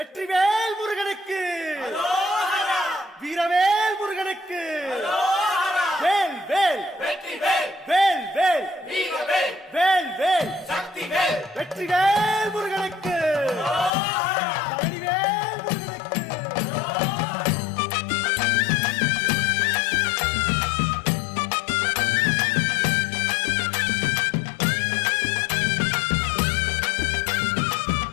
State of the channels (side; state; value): right; drops out; at 13.9 s